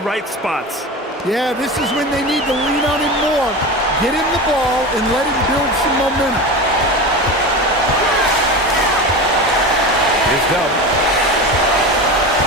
right spots. Yeah, this is when they need to lean on him more. Get him the ball and let him build some momentum. Here's Dub.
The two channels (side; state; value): both; normal; correlation 0.27